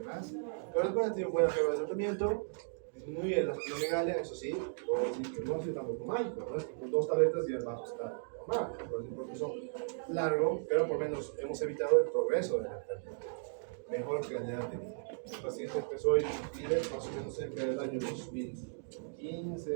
Pero después han tenido buena prueba de tratamiento, disminuye la splenomegalia, eso sí, puedo decir que no ha sido tampoco mágico, ¿no? Es que con 2 tabletas ya vamos a estar normal, es un proceso largo, pero por lo menos hemos evitado el progreso de la enfermedad. Mejor calidad de vida. El paciente empezó en Chile más o menos cerca del año 2015,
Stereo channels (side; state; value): left; silent; digital silence